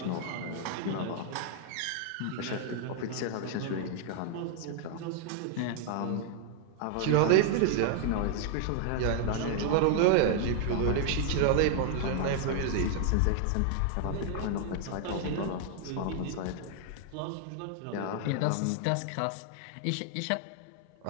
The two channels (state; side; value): different; both; correlation 0.00